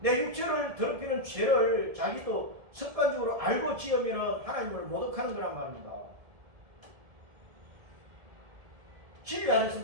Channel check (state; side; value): late; left; 1.7 ms